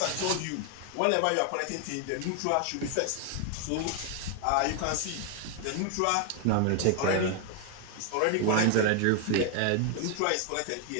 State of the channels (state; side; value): different; both; correlation 0.01